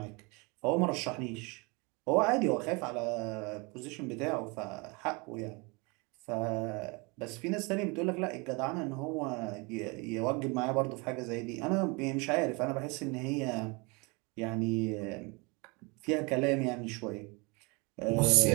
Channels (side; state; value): left; quieter; 28.8 dB